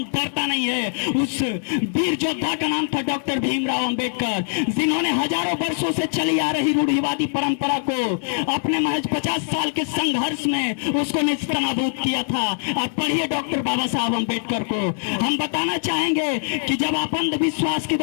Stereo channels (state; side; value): silent; right; 64 dB below the other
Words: डरता नहीं है। उस वीर योद्धा का नाम था डॉक्टर भीमराव अंबेडकर, जिन्होंने हजारों वर्षों से चली आ रही रूढ़िवादी परंपरा को अपने महज 50 साल के संघर्ष में उसको निस्तानाबूद किया था। आप पढ़िए डॉक्टर बाबा साहब अंबेडकर को। हम बताना चाहेंगे कि जब आप अंधविश्वास के